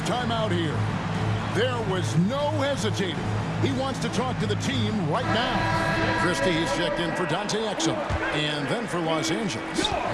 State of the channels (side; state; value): both; identical; correlation 1.00